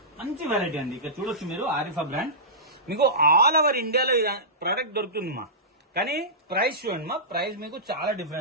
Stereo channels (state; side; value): normal; both; correlation -0.18